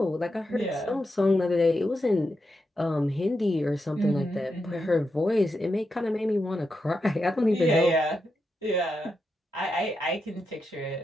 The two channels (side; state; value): both; normal; correlation 0.86